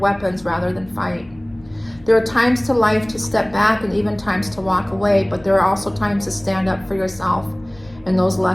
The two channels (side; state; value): left; noise; hum, 24 dB below the sound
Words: rather than fight. There are times to life to step back and even times to walk away, but there are also times to stand up for yourself and those